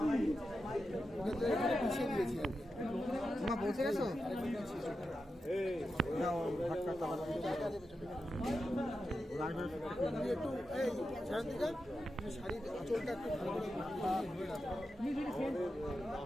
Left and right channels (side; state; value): both; normal; correlation 0.89